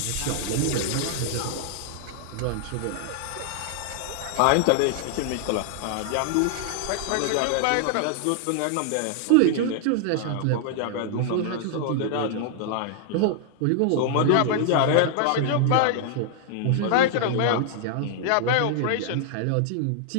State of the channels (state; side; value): different; both; correlation 0.00